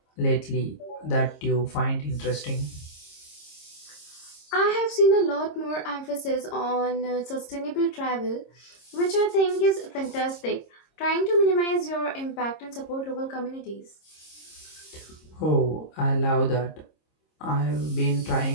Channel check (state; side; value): late; right; 26 ms